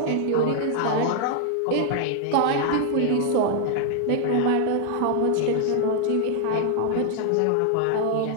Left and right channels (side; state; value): both; different; correlation 0.00